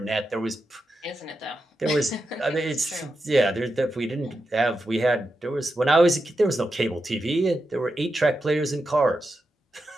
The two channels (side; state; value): both; normal; correlation 0.88